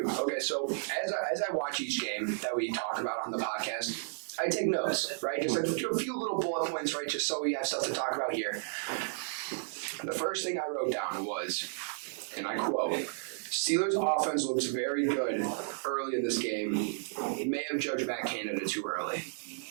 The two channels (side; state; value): left; silent; digital silence